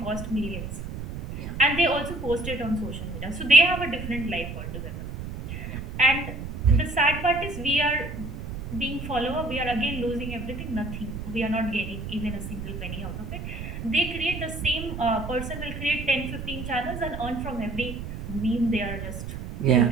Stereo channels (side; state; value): right; noise; rumble, 8 dB below the sound